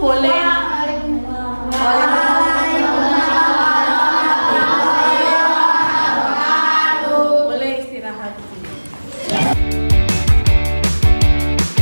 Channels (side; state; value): both; inverted; correlation -1.00